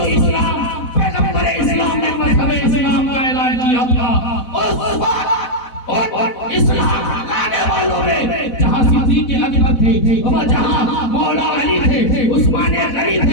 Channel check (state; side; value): late; right; 4.1 ms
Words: اسلام، پیغمبر اسلام نے مذہب اسلام کا اعلان کیا تھا، اس وقت اسلام لانے والوں میں جہاں صدیق اکبر تھے، جہاں مولا علی تھے، عثمان غنی